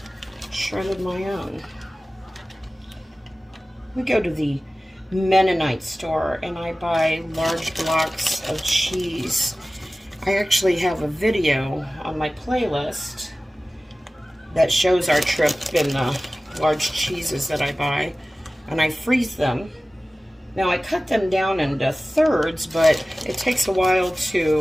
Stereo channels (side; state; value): both; normal; correlation 0.97